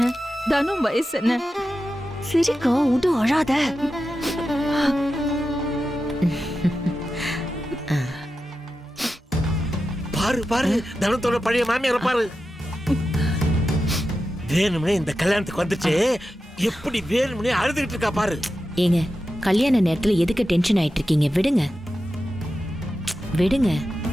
தனும் வயசு என்ன? சரிக்கா, விடு, அழாத. பாரு பாரு, தனத்தோட பழைய மாமியார பாரு. வேணும்னே இந்த கல்யாணத்துக்கு வந்துட்டு எப்படி வேணும்னே அழுதுகிட்டு இருக்கா பாரு. ஏங்க, கல்யாண நேரத்துல எதுக்கு டென்ஷன் ஆயிட்டு இருக்கீங்க? விடுங்க விடுங்க.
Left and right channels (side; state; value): both; normal; correlation 0.91